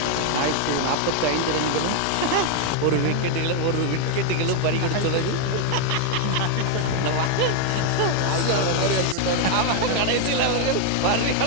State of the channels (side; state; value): both; different; correlation 0.00